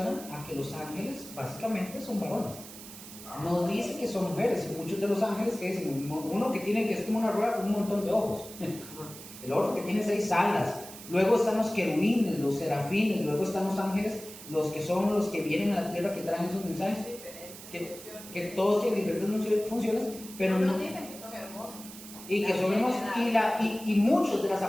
a que los ángeles básicamente son varones. No dice que son mujeres. Y muchos de los ángeles que dicen, uno que tiene, que es como una rueda con un montón de ojos. El otro que tiene 6 alas. Luego están los querubines, los serafines. Luego están los ángeles, los que son los que vienen a la tierra, que traen esos mensajes. Que todos tienen diferentes funciones, pero no dicen que son hermosos. Y que son hermosos. Y muchas de las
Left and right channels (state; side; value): noise; right; hiss, 15 dB below the sound